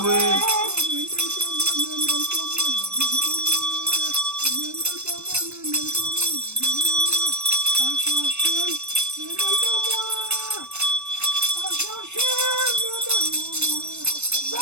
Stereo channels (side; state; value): left; late; 0.82 ms